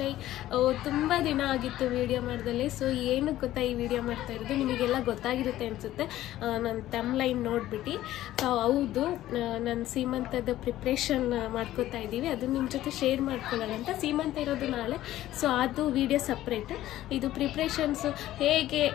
ತುಂಬ ದಿನ ಆಗಿತ್ತು ವಿಡಿಯೋ ಮಾಡ್ದಲ್ಲಿ. ಸೊ ಏನು ಗೊತ್ತಾ ಈ ವಿಡಿಯೋ ಮಾಡ್ತಾ ಇರೋದು ನಿಮಗೆಲ್ಲ ಗೊತ್ತಾಗಿರುತ್ತೆ ಅನಿಸುತ್ತೆ ನನ್ನ ತಮ್ಲೈನ್ ನೋಡಿಬಿಟ್ಟು. ಹೌದು, ನಾನು ಸೀಮಂತದ ಪ್ರಿಪ್ರೇಷನ್ ಮಾಡ್ಕೋತಾ ಇದ್ದೀವಿ. ಅದು ನಿಮ್ಮ ಜೊತೆ ಶೇರ್ ಮಾಡ್ಕೊಳ್ಳೋಣ ಅಂತ. ಸೀಮಂತ ಇರೋದು ನಾಳೆ, ಸೊ ಅದು ವಿಡಿಯೋ ಸಪ್ರೇಟ್. ಇದು ಪ್ರಿಪ್ರೇಷನ್ಸು ಹೇಗೆ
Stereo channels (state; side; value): quieter; right; 14.3 dB